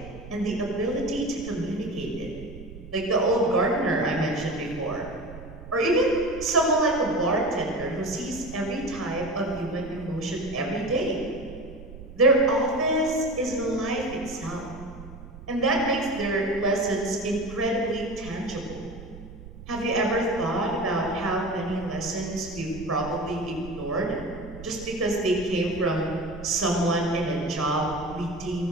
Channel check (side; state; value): right; noise; rumble, 15 dB below the sound